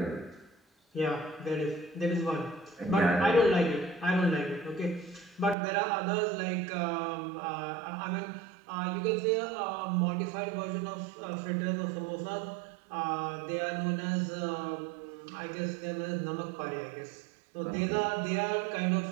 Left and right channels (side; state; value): left; drops out; at 5.6 s